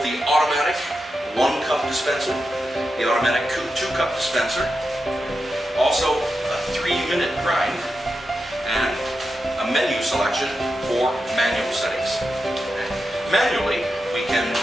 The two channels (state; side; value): normal; both; correlation 0.89